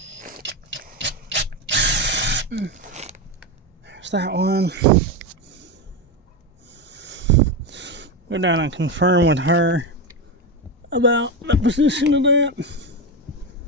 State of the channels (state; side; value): normal; both; correlation 0.14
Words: There's that one. Go down and confirm with her about the position of that.